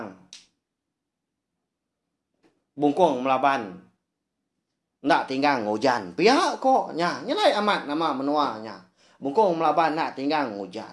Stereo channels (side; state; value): both; identical; correlation 1.00